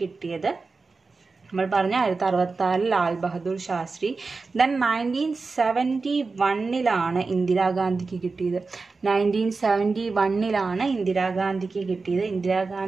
നമ്മൾ പറഞ്ഞ 1966 ലാൽ ബഹദൂർ ശാസ്ത്രി. ദെൻ 1971 ഇന്ദിരാഗാന്ധിക്ക് കിട്ടിയത്. 1971 ഇന്ദിരാഗാന്ധിക്ക് കിട്ടിയത്.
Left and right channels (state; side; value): quieter; left; 4.1 dB